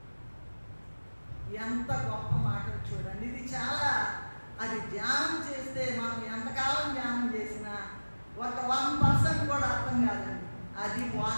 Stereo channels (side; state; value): both; inverted; correlation -1.00